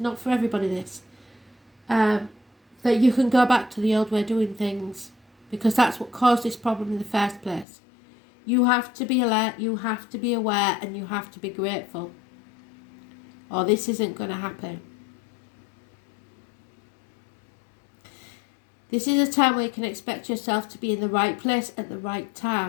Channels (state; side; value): drops out; right; at 7.7 s